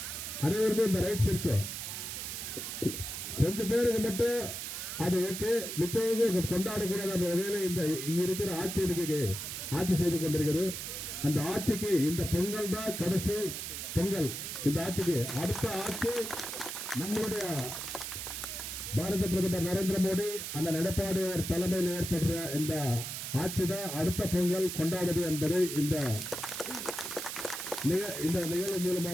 அனைவருக்கும் இந்த ரைட்ஸ் இருக்கு. கொஞ்சம் பேருக்கு மட்டும் அது ஓகே, மிச்சவங்க கொண்டாடக்கூடாத வகையில இந்த இங்க இருக்கிற ஆட்சி செய்து கொண்டிருக்கிறது. அந்த ஆட்சிக்கு இந்த பொங்கல் தான் கடைசி பொங்கல். இந்த ஆட்சிக்கு அடுத்த ஆட்சி நம்மளுடைய பாரத பிரதமர் நரேந்திர மோடி அந்த எடப்பாடி தலைமையில் ஏற்படுற இந்த ஆட்சி தான் அடுத்த பொங்கல் கொண்டாடுது என்பதை இந்த நிகழ்வு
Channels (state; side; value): noise; right; hiss, 6 dB below the sound